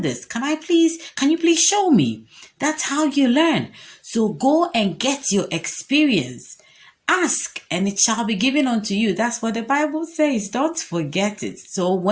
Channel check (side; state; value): both; identical; correlation 1.00